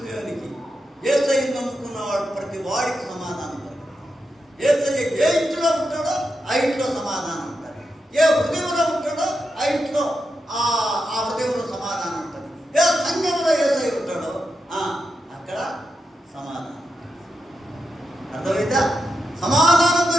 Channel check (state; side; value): normal; both; correlation 0.87